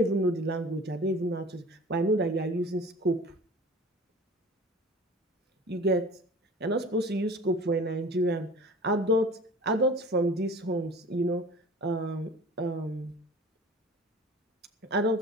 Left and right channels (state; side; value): normal; both; correlation 0.42